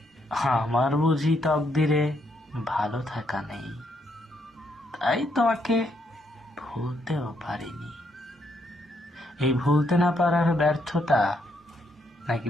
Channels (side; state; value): both; normal; correlation 0.75